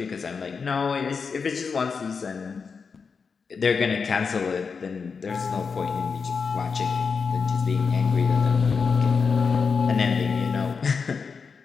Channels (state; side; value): quieter; right; 5.4 dB